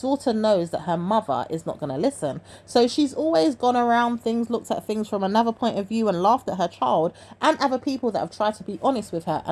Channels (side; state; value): both; identical; correlation 1.00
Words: knows that her mother is not going to listen. So she's always gone around things, looked at things from another point of view and laughed at her child and other people that have tried to be honest with her